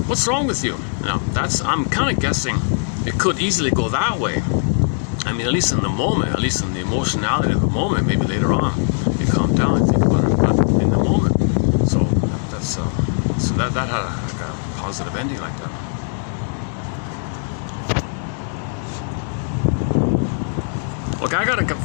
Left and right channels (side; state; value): right; silent; digital silence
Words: What's wrong with you? Now, I'm kind of guessing it could easily go that way. I mean, at least in the moment, at least in the emotionality of the moment, maybe later on, you calm down and think about it, but in the moment. So that had a positive ending like that. Look, I gotta